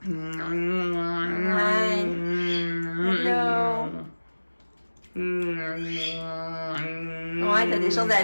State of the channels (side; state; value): both; inverted; correlation -1.00